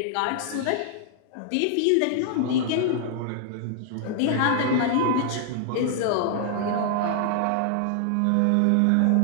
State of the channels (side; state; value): both; different; correlation 0.00